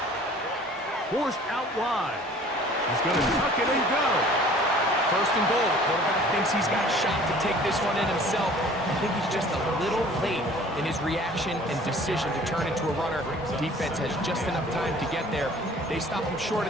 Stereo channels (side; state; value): both; normal; correlation 0.50